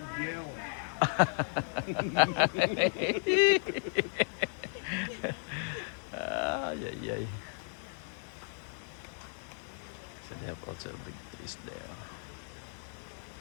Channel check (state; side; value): silent; right; 55 dB below the other